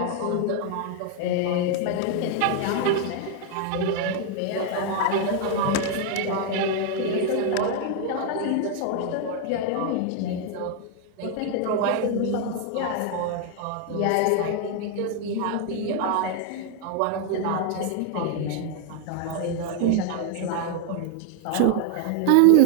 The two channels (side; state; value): both; different; correlation 0.00